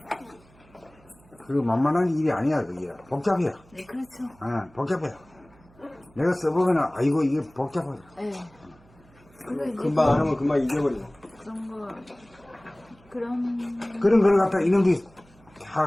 그 만만한 일이 아니야. 그게 복잡해요. 네, 그렇죠. 복잡해요. 내가 써보면 아이고 이게 복잡하다. 네. 근데 이제 금방 안 하면 금방 잊어버리고. 그런 그런 걸 갖다 이놈들이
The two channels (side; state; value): right; noise; hum, 28 dB below the sound